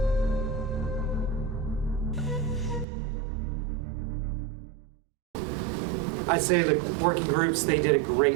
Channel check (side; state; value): left; drops out; at 2.9 s